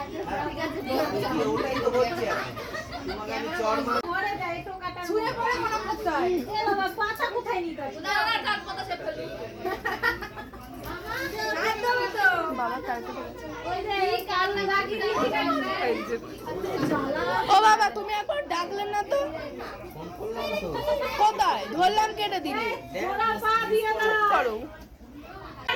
ধরে ঠিক আছে ওটাই তো হচ্ছে এখন। তোমাকে আমি চড় মার ঘরে যাই টোকাটা শুয়ে পড়ে মনে করতে হয়। এ বাবা পাছা কোথায় নিতে হবে? না না কার কথা সে ফেলবি একদম তো বাবা তারপরে ওই যে এই কাল লাগিয়ে দিয়েছি ও বাবা তুমি একবার ডাকলেন না তো? কোথায় ধরলাম কেটে দিলে ওরা পা দিয়ে দাও। করো।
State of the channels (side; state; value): both; identical; correlation 1.00